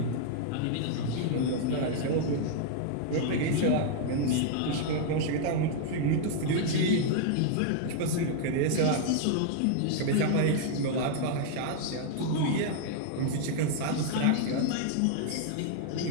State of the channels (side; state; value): both; different; correlation 0.00